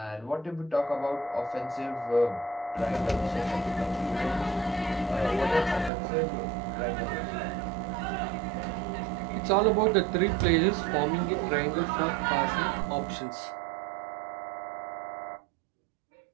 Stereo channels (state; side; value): drops out; left; at 5.9 s